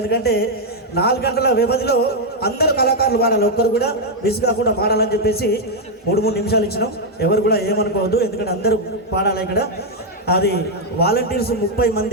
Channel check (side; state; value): both; normal; correlation 0.00